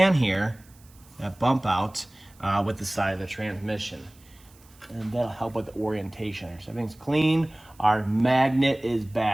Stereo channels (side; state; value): right; noise; hiss, 28 dB below the sound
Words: here, that bump out with the side of the transmission. And that'll help with the orientation. So everything's clean. Our magnet is